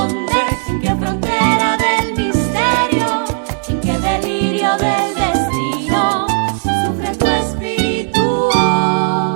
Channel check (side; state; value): left; silent; 69 dB below the other